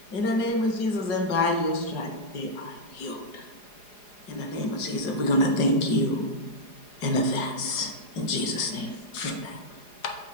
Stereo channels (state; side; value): late; right; 4.9 ms